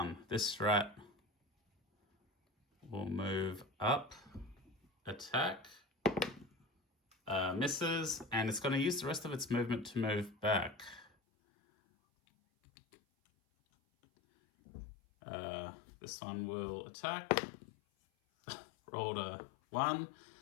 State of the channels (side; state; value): right; drops out; at 11.1 s